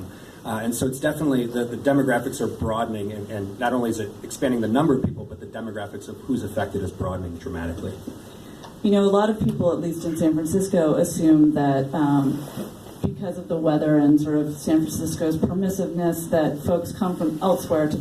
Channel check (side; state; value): both; identical; correlation 1.00